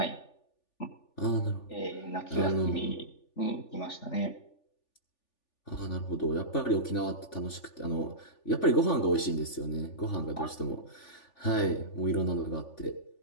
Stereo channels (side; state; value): right; late; 3.4 ms